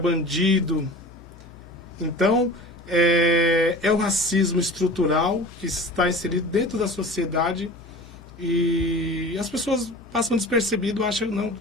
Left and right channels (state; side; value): normal; both; correlation 0.37